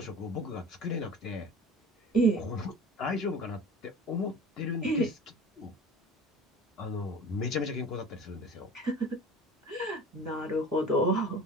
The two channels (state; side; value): normal; both; correlation 0.40